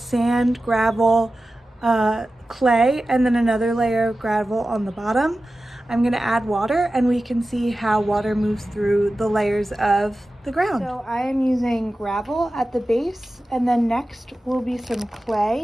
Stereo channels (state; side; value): normal; both; correlation 0.94